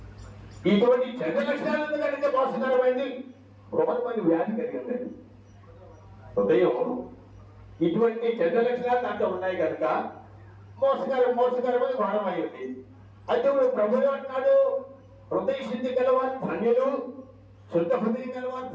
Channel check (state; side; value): identical; both; correlation 1.00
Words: ఇటువంటి చెడ్డ లక్షణాలు కలిగే మోసకరమైంది, ఘోరమైన వ్యాధి కలిగింది హృదయం. ఇటువంటి చెడ్డ లక్షణాలు దాంట్లో ఉన్నాయి కనుక మోసకరమైన ఘోరమైంది. అయితే ప్రభువు అంటున్నాడు, హృదయ శుద్ధి గలవారు ధన్యులు, శుద్ధ హృదయం గలవారు